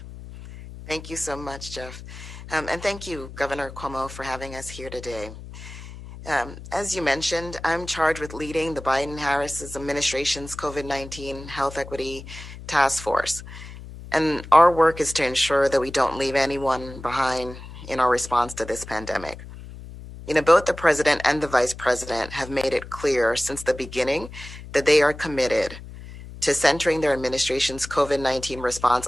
Thank you so much, Jeff. And thank you, Governor Cuomo, for having us here today. As you mentioned, I'm charged with leading the Biden-Harris administration's COVID-19 Health Equity Task Force. And our work is to ensure that we don't leave anyone behind in our response to this pandemic. Both the president and the vice president have made it clear since the beginning that they are committed to centering their administration's COVID-19 response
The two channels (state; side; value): noise; left; hum, 14 dB below the sound